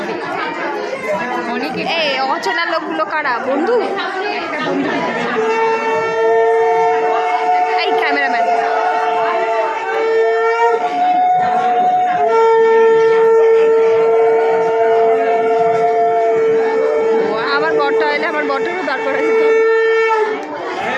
এই অচেনা লোকগুলো কারা? বন্ধু? এই ক্যামেরাম্যান আমার বরটা এলে আমার বরটারও দাঁড় করা যেত।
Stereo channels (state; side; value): identical; both; correlation 1.00